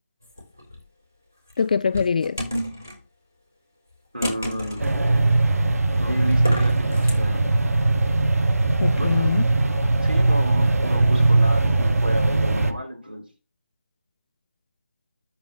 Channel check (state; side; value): inverted; both; correlation -0.92